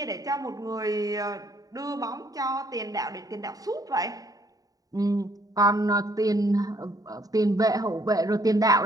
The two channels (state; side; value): late; left; 0.18 ms